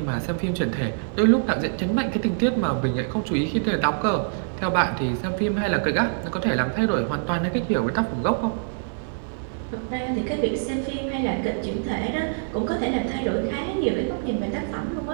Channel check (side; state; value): left; silent; digital silence